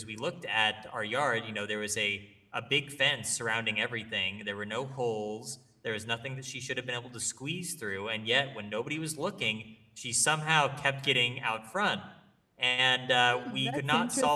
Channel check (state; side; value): identical; both; correlation 1.00